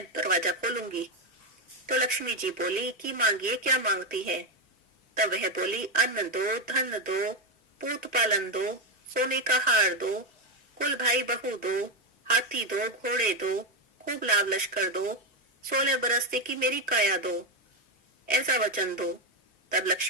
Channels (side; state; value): both; normal; correlation 0.09